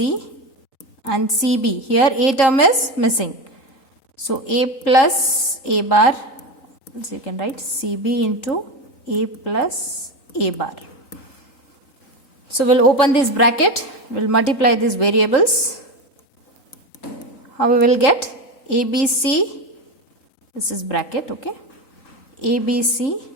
and CB. Here A term is missing. So A plus A bar, so you can write CB into A plus A bar. So we'll open this bracket, we'll multiply these variables. How we will get ABC, this is bracket, okay? ABC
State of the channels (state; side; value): late; right; 3.7 ms